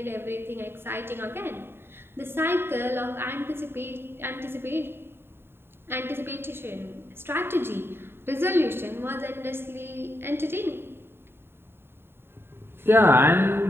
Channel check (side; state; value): left; late; 0.11 ms